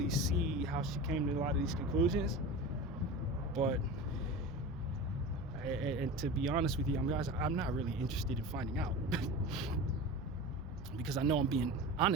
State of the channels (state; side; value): normal; both; correlation 0.30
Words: see how she came to a lot of these conclusions. But and to be honest with you, guys, I'm not really interested in finding out because I know I'm being